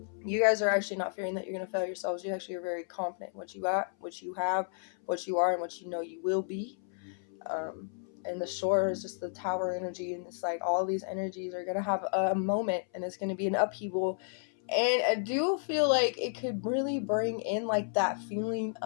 you guys are actually not fearing that you're going to fail yourselves. You actually are very confident in what you got, what you have, what you are, and what you know you will be. And the shore is just the tower energy, and it's like all these energies are going to have a moment, and it's going to be an upheaval. And I do feel like it could really bring in like that feeling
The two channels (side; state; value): right; silent; 56 dB below the other